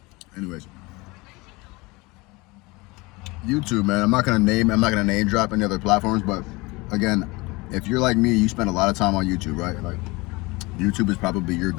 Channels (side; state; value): right; quieter; 24.0 dB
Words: Anyways, YouTube, man. I'm not gonna name drop any other platforms, but again, if you're like me, you spend a lot of time on YouTube, right? Like, YouTube is probably your